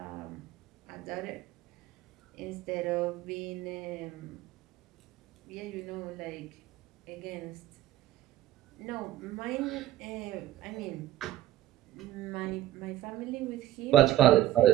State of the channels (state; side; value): quieter; left; 13.8 dB